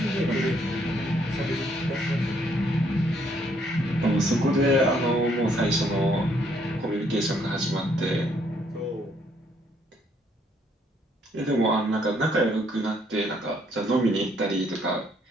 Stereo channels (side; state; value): both; normal; correlation 0.68